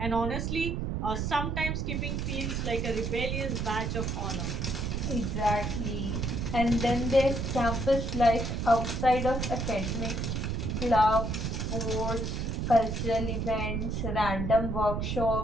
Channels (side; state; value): right; noise; rumble, 1 dB below the sound